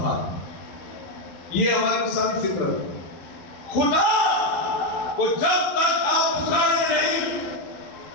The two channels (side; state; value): right; late; 11 ms